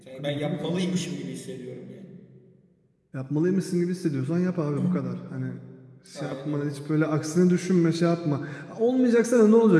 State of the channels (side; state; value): both; identical; correlation 1.00